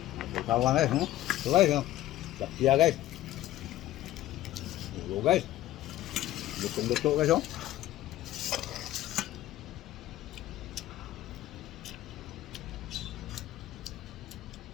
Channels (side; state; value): right; quieter; 14.6 dB